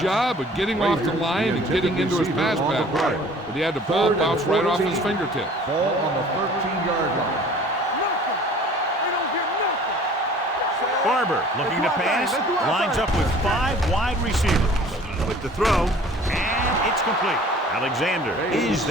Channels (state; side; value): normal; both; correlation 0.49